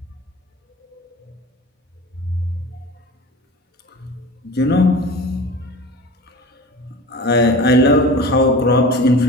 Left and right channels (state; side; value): normal; both; correlation 0.36